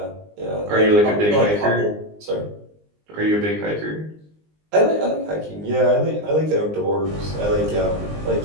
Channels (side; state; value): left; late; 19 ms